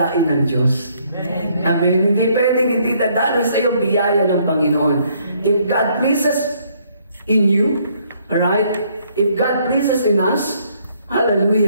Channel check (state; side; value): inverted; both; correlation -0.67